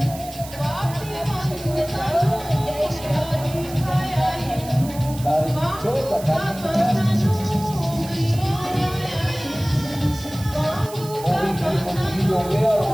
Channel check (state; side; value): noise; right; hiss, 15 dB below the sound